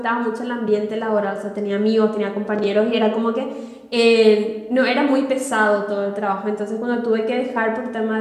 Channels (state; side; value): identical; both; correlation 1.00